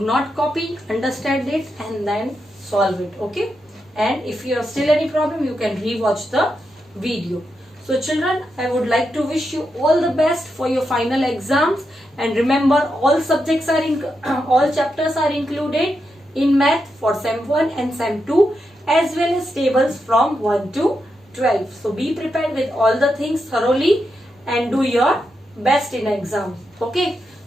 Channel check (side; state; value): both; normal; correlation 0.85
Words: not copy, understand it and then solve it. Okay, and if you have still any problem, you can rewatch the video. So children, I would like to wish you all the best for your final exams, and remember all subjects are in all chapters are included in math for sem 1 and sem 2, as well as tables from 1 to 12. So be prepared with all the things thoroughly and do your best in exam. Okay,